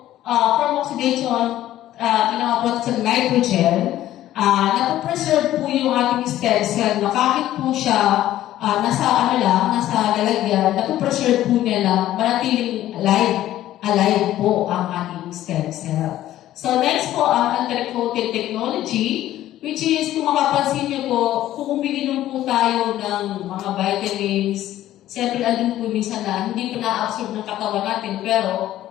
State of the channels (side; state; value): right; quieter; 13.5 dB